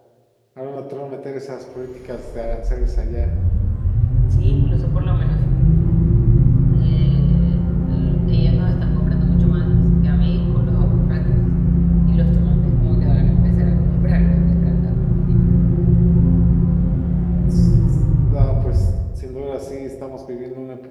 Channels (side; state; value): both; identical; correlation 1.00